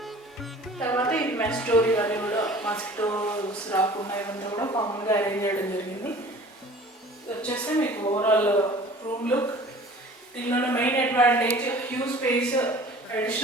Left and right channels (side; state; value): both; normal; correlation 0.46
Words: తర్వాత ఇది మెస్ డోర్ ఇవన్నీ కూడా మస్కిటోస్ రాకుండా ఇవన్నీ కూడా కామన్గా అరేంజ్ చేయడం జరిగింది. వచ్చేస్తే మీకు ఓవరాల్ రూమ్ లుక్. దీనిలో మెయిన్ అడ్వాంటేజ్ హ్యూజ్ స్పేస్